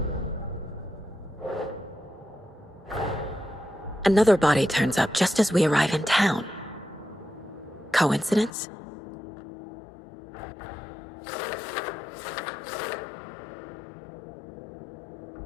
Another body turns up just as we arrive in town. Coincidence?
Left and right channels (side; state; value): right; drops out; at 8.5 s